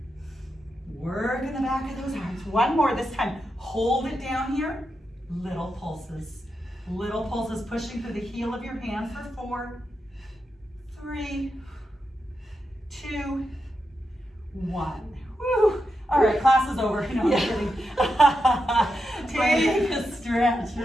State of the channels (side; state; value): both; normal; correlation 0.86